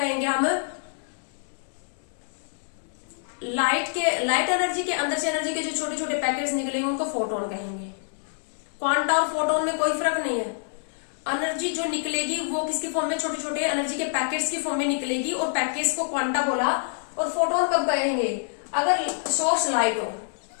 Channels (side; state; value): right; silent; digital silence